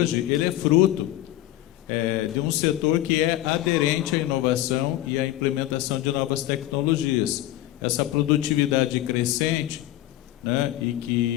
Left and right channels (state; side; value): quieter; right; 14.7 dB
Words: ele é fruto de um setor que é aderente à inovação e à implementação de novas tecnologias. Essa produtividade crescente, né, e